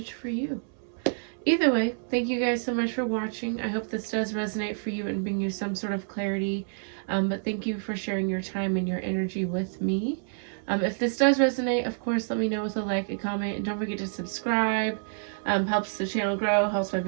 for you. Either way, thank you guys so much for watching. I hope this does resonate for you and bring you some sort of clarity, but thank you for sharing your time and your energy with me. If this does resonate, of course, let me know with a like, a comment, and don't forget to subscribe. Helps the channel grow, helps my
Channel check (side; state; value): left; silent; 59 dB below the other